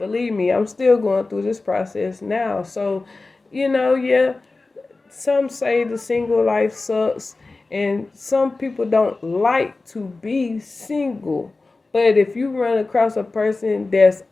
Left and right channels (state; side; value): quieter; right; 3.5 dB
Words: me, I'm still going through this process now. So, yeah, some say the single life sucks, and some people don't like to be single. But if you run across a person that's